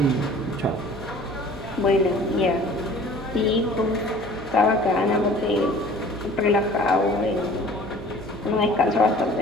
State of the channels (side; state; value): both; normal; correlation 0.48